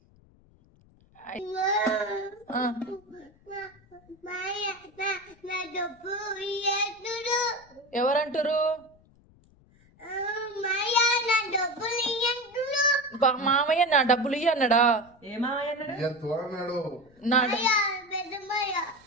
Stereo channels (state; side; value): noise; left; rumble, 29 dB below the sound